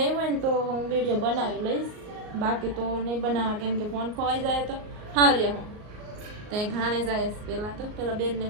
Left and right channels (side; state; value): left; late; 38 ms